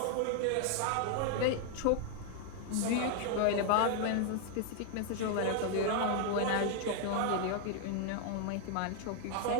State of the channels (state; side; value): different; both; correlation 0.00